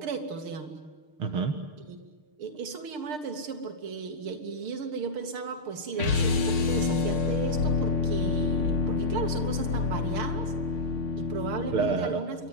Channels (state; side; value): late; left; 6.6 ms